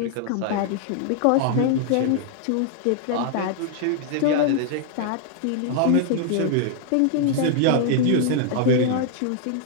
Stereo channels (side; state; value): both; different; correlation 0.00